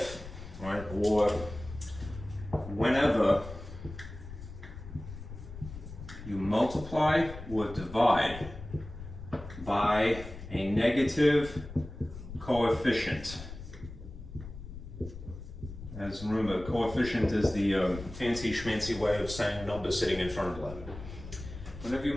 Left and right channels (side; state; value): left; noise; rumble, 12 dB below the sound